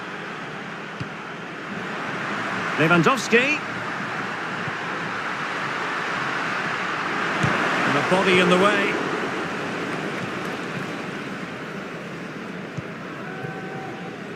Lewandowski. And the body in the way.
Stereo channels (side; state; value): both; identical; correlation 1.00